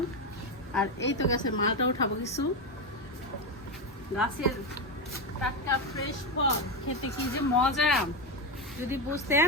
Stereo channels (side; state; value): both; normal; correlation 0.12